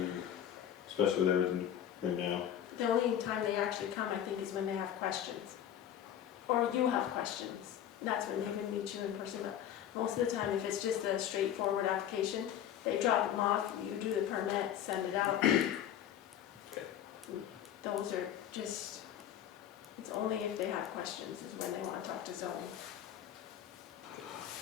especially with everything right now. The only time they actually come, I think, is when they have questions. Or you have questions. that's when they would meet you in person, but most of the time, if it's just a straightforward application, they drop them off, you do the permit, send it out. Those are just, it's only if they have questions is when they want to talk to zoning.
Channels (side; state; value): right; quieter; 10.3 dB